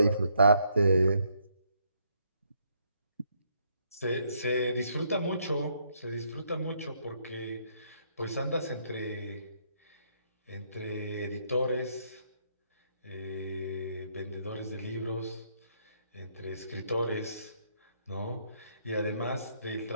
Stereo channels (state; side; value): inverted; both; correlation -0.72